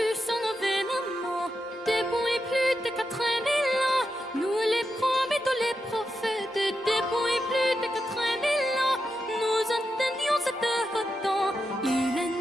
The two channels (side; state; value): both; normal; correlation 0.87